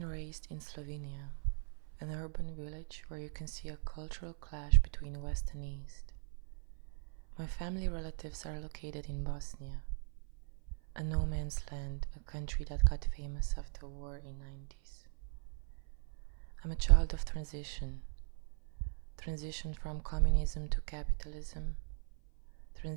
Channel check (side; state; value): left; silent; 52 dB below the other